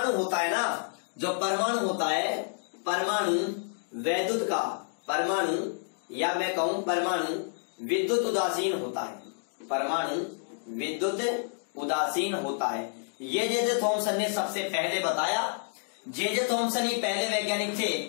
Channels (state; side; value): silent; right; digital silence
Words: होता है ना, परमाणु या मैं कहूं परमाणु विद्युत उदासीन होता है। ये जे थॉमसन ने सबसे पहले बताया। जे थॉमसन ही पहले वैज्ञानिक थे